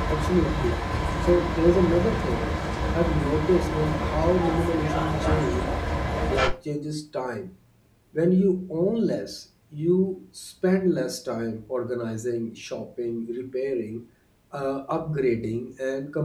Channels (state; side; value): identical; both; correlation 1.00